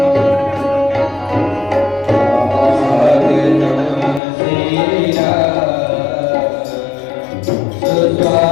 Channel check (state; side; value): drops out; right; at 4.2 s